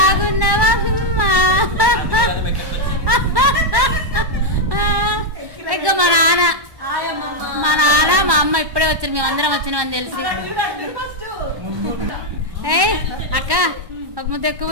అమ్మా? ఇంకా మా నాన్న మా అమ్మ ఇప్పుడే వచ్చారు, మేమందరం వచ్చినామని తెలిసి. ఏ అక్క ఒక ముద్ద ఎక్కువ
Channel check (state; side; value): late; left; 1.1 ms